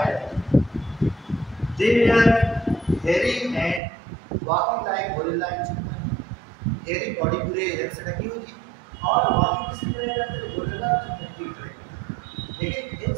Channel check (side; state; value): left; drops out; at 3.8 s